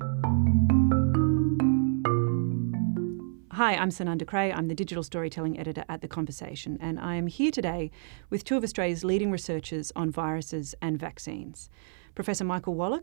I'm Sunanda Creagh. I'm the digital storytelling editor at The Conversation, and I am here today with two of Australia's leading researchers on viruses and vaccines. Professor Michael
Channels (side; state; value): left; silent; 59 dB below the other